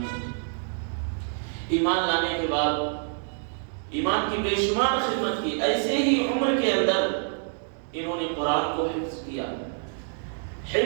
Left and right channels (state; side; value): silent; left; 60 dB below the other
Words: ایمان لانے کے بعد ایمان کی بے شمار خدمت کی، ایسے ہی عمر کے اندر انہوں نے قرآن کو حفظ کیا۔